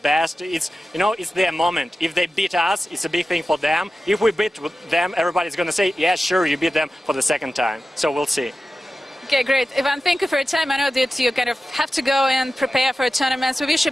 It's, you know, it's their moment. If they beat us, it's a big thing for them. If we beat them, everybody's going to say, yeah, sure, you beat them for the second time. So we'll see. Okay, great. Ivan, thank you for your time. I know that you kind of have to go and prepare for a tournament. So we wish you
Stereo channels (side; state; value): both; normal; correlation 0.94